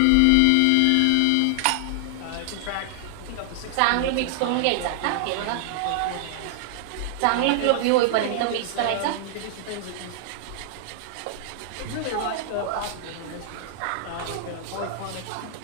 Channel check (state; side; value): different; both; correlation -0.01